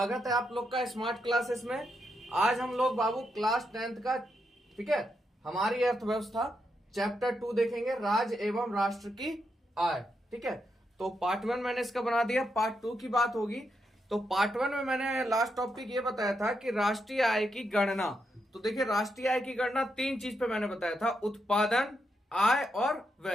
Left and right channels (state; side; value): normal; both; correlation 0.82